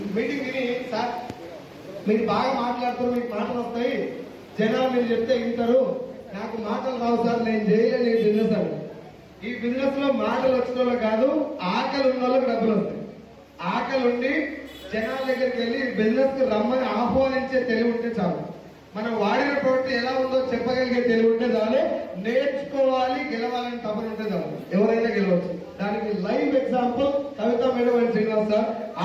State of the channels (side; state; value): both; identical; correlation 1.00